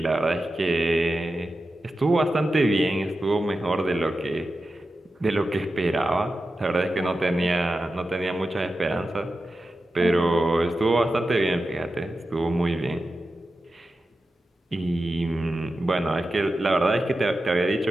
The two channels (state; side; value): normal; both; correlation 0.92